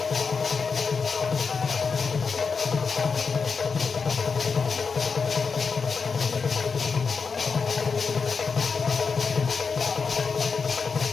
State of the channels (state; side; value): quieter; right; 5.3 dB